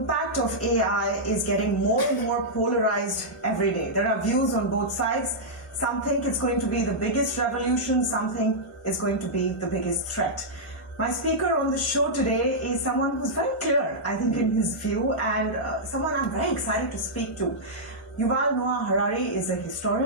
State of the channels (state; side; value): normal; both; correlation -0.09